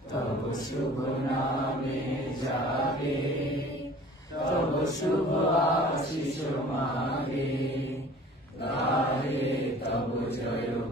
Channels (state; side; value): normal; both; correlation 0.47